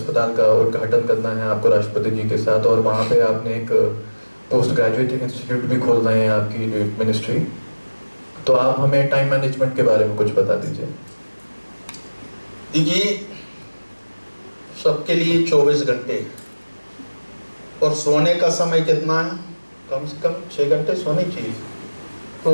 का उद्घाटन करना है आपको राष्ट्रपति जी के साथ, और वहाँ पे आपने एक पोस्ट ग्रेजुएट इंस्टीट्यूट भी खोल रहे हैं आपकी मिनिस्ट्री। तो आप हमें टाइम मैनेजमेंट के बारे में कुछ बता दीजिए। देखिए, सबके लिए 24 घंटे, और सोने का समय कितना है? कम से कम 6 घंटे सोने चाहिए।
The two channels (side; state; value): both; inverted; correlation -1.00